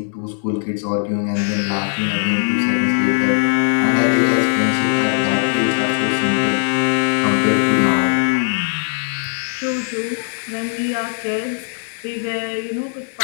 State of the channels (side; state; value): right; silent; digital silence